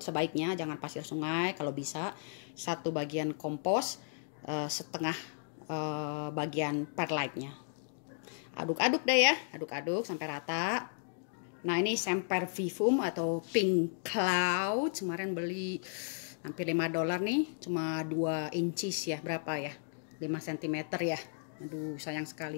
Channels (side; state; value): right; silent; digital silence